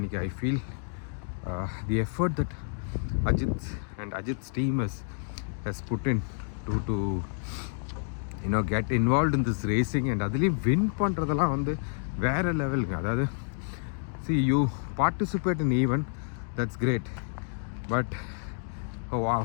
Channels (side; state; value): right; silent; digital silence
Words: I feel the effort that Ajith's team has put in to get involved in this racing, and அதுலேயும் வின் பண்ணுறதெல்லாம் வந்து வேறு லெவலுங்க. அதாவது see, you participate in event, that's great, but oh wow,